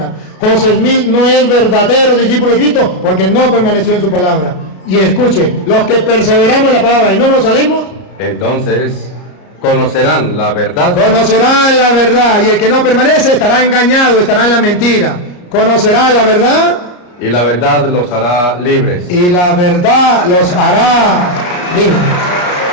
José Smith no es verdadero discípulo de Cristo porque no permaneció en su palabra. Y escuche, los que perseveramos en la palabra y no nos salimos, Entonces conocerán la verdad. conocerán la verdad, y el que no permanece estará engañado, estará en la mentira. Conocerá la verdad Y la verdad los hará libres. y la verdad los hará.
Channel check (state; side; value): late; right; 33 ms